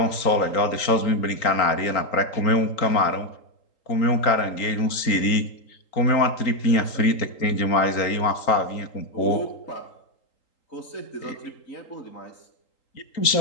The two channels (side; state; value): right; late; 3.8 ms